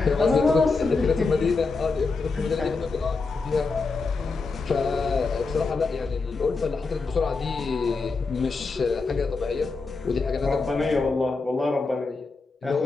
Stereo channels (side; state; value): right; quieter; 4.1 dB